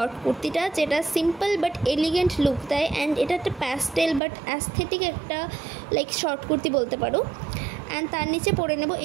কুর্তিটা, যেটা সিম্পল বাট এলিগেন্ট লুক দেয় অ্যান্ড এটা একটা প্যাস্টেল বাট অ্যাস্থেটিক একটা লাইক শর্ট কুর্তি বলতে পারো। অ্যান্ড তার নিচে পরে নেব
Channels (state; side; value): drops out; left; at 4.2 s